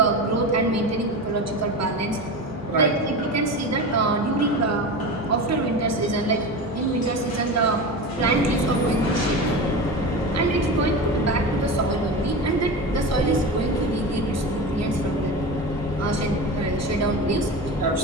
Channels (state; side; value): normal; both; correlation 0.26